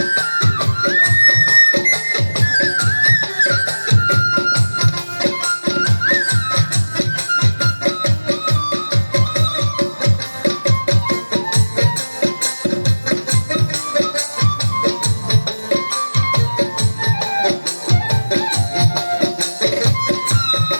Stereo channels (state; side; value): inverted; both; correlation -1.00